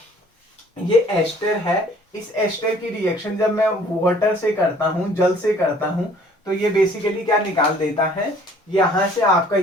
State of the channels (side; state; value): both; normal; correlation 0.55